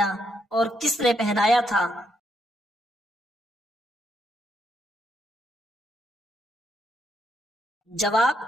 اور کس نے پہنایا تھا؟ جواب:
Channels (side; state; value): both; normal; correlation 0.78